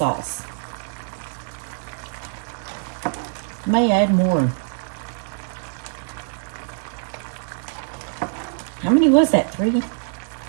May add more. How many was that? 3?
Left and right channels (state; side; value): silent; left; 63 dB below the other